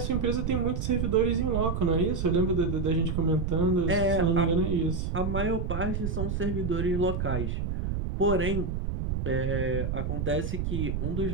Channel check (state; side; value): noise; right; rumble, 1 dB below the sound